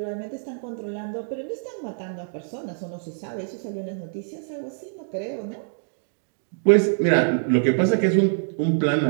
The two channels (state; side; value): silent; left; digital silence